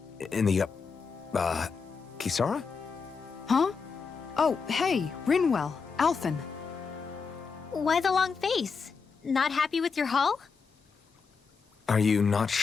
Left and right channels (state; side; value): quieter; right; 5.3 dB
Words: Kisara? Huh? Oh, hey, Rinwell, Alphen. Why the long face? Not happy with your haul? Are you not